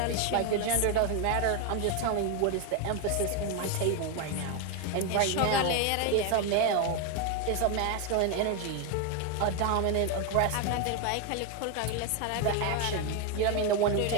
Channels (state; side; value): different; both; correlation 0.01